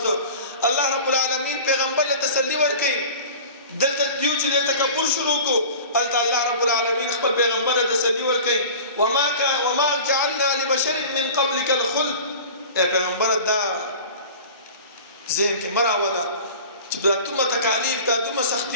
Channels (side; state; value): both; inverted; correlation -0.38